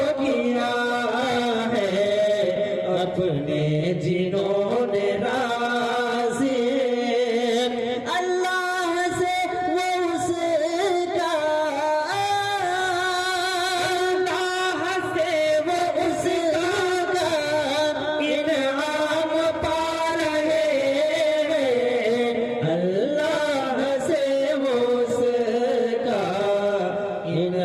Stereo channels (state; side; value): identical; both; correlation 1.00